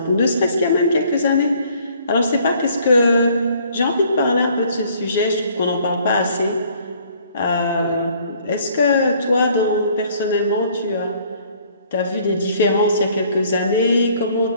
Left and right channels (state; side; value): inverted; both; correlation -0.60